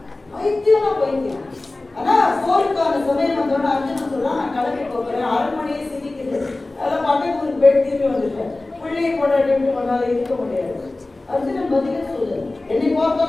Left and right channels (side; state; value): right; quieter; 3.0 dB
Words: அர்ஜுனன். பைத்தியம். ஆனா போருக்கான சமயம் வந்தோட அர்ஜுனன் சொல்றான், நான் கிளம்பி போகிறேன், அரண்மனையே சிரிக்குது, அதெல்லாம் பக்கத்து ஒரு பெண் திரும்பி வந்துட்டேன், பிள்ளையை கொண்டாடி கொண்டாலும் இருக்க முடியாது. அர்ஜுனன் பதிலே சொல்லு, என்னை பார்த்தா